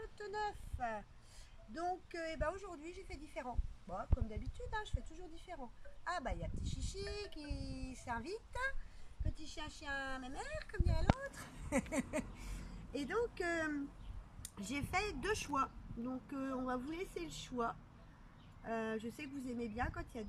29. Donc aujourd'hui j'ai fait différent. Bon, comme d'habitude, hein, je fais toujours différent. Ah bah il y a petit chichi qui s'invite, petit chien chien mémère comme dirait l'autre. Et donc j'ai fait deux choix. Donc on va vous laisser le choix. Je sais que vous aimez bien quand il y a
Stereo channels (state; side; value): identical; both; correlation 1.00